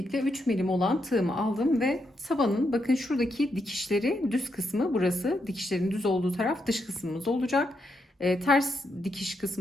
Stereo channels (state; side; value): normal; both; correlation 0.81